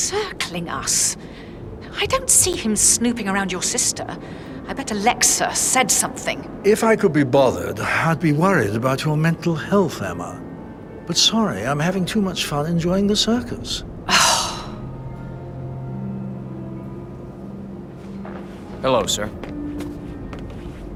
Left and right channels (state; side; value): identical; both; correlation 1.00